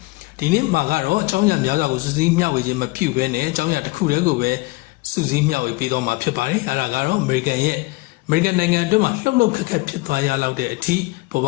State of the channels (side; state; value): right; quieter; 22.7 dB